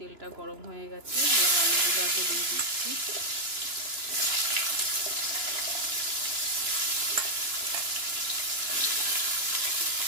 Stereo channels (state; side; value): late; left; 2.9 ms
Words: গরম হয়ে গেছে। এবার আলুগুলো আগে দিয়ে দিচ্ছি।